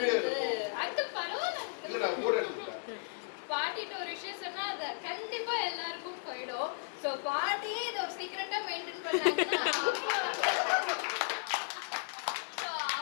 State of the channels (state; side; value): silent; right; digital silence